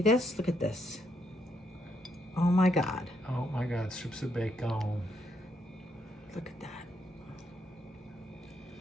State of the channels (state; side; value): normal; both; correlation 0.76